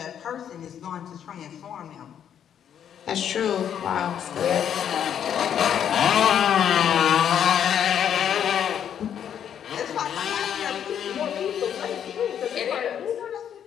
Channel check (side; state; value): right; quieter; 9.1 dB